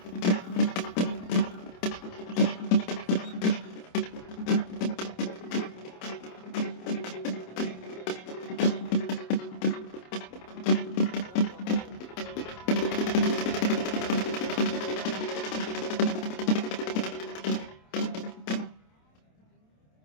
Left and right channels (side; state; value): right; late; 27 ms